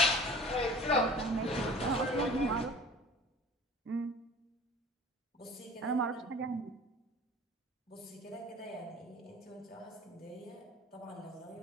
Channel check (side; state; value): both; normal; correlation 0.43